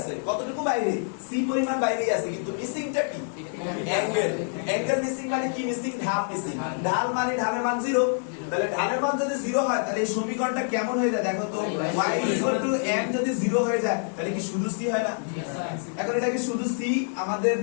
কতটুকু বাইরে? সি পরিমাণ বাইরেই আছে, কিন্তু মিসিংটা কি? অ্যাঙ্গেল। অ্যাঙ্গেল মিসিং মানে কি মিসিং? ঢাল মিসিং। ঢাল মানে ঢালের মান 0। তাহলে ঢালের মান যদি 0 হয় তাহলে এই সমীকরণটা কেমন হয়ে যায় দেখো তো? y m যদি 0 হয়ে যায় তাহলে কি শুধু c হয় না? এখন এটা কি শুধু c? আমাদের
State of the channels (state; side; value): silent; right; 61 dB below the other